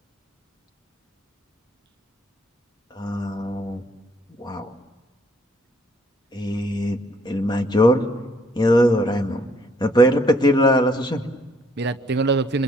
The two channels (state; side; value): normal; both; correlation 0.65